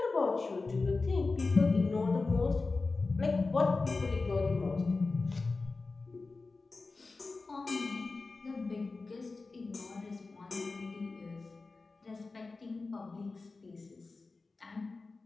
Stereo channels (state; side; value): quieter; right; 3.8 dB